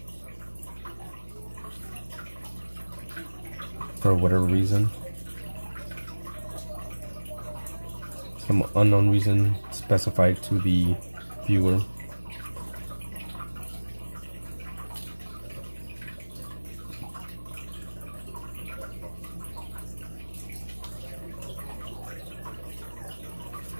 for whatever reason, some unknown reason specified to the viewer.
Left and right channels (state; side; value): inverted; both; correlation -1.00